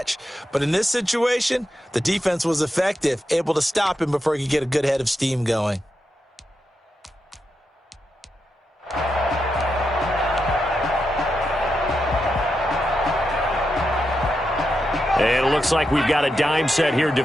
But in this situation, the defense was effective, able to stop him before he could get a good head of steam going. And it looks like we've got a dime set here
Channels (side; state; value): both; normal; correlation 0.86